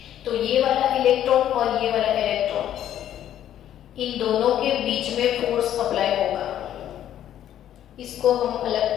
तो ये वाला इलेक्ट्रॉन और ये वाला इलेक्ट्रॉन, इन दोनों के बीच में फोर्स अप्लाई होगा। इसको हम अलग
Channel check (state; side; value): quieter; right; 11.2 dB